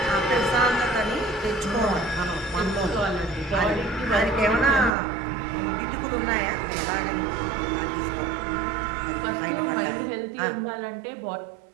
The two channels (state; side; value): drops out; left; at 4.9 s